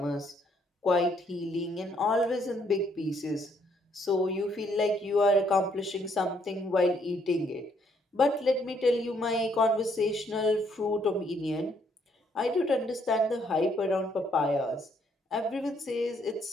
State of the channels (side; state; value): both; normal; correlation 0.69